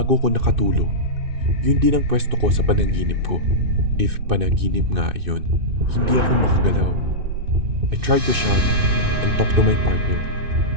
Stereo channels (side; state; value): left; late; 2.6 ms